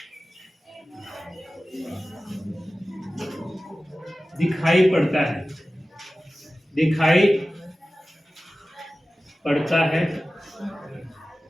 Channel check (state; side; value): normal; both; correlation 0.96